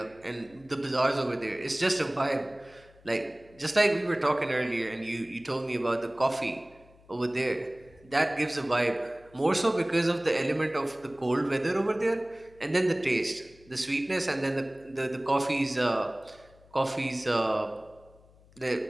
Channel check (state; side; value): noise; left; hum, 27 dB below the sound